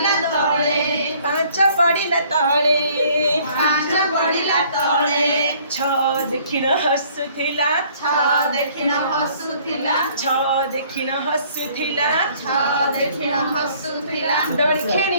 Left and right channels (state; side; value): inverted; both; correlation -0.58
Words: तळे पांच पड़िला तळे पांच पड़िला तळे छ देखिण हसुथिला छ देखिण हसुथिला छ देखिण हसुथिला छ देखिण हसुथिला दोଳି